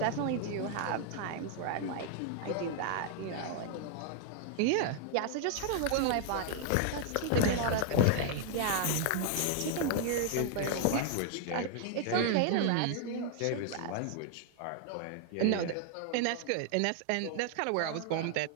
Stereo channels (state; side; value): different; both; correlation 0.00